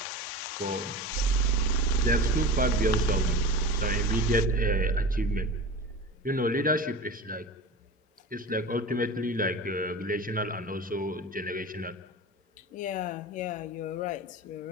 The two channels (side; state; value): both; normal; correlation 0.32